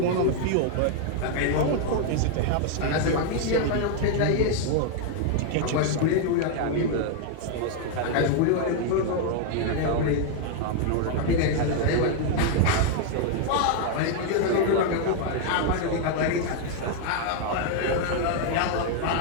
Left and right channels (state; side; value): different; both; correlation 0.00